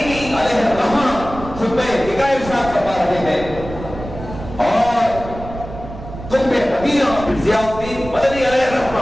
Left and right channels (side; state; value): right; noise; rumble, 12 dB below the sound